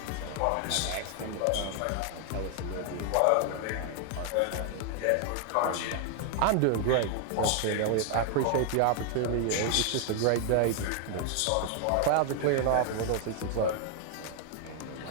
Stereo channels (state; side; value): different; both; correlation 0.00